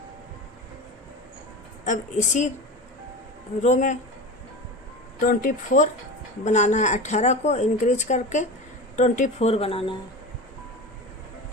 अब इसी रो में 24 बनाना है। 18 को इंक्रीज करके 24 बनाना है।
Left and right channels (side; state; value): both; normal; correlation 0.28